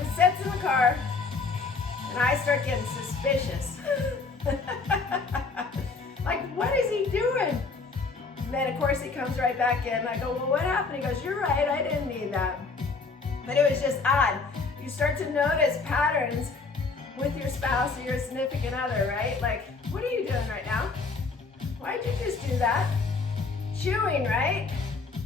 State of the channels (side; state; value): right; quieter; 4.3 dB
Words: sits in the car, and I start getting suspicious. Like, what is he doing? And then, of course, he comes right back in. I go, well, what happened? He goes, you're right. I didn't need that. But it was just odd. You start to notice patterns with your spouse or your significant other, right? Like, what are you doing right now? Why'd you just do that? Chewing, right?